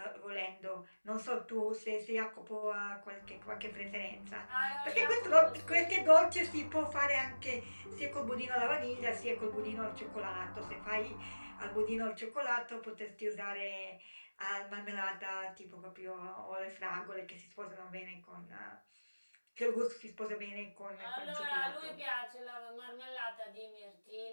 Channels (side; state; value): both; inverted; correlation -1.00